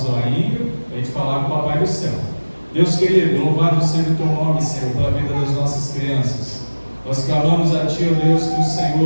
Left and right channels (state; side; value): inverted; both; correlation -1.00